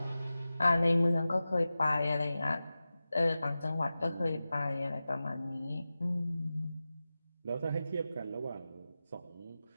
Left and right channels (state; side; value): inverted; both; correlation -0.95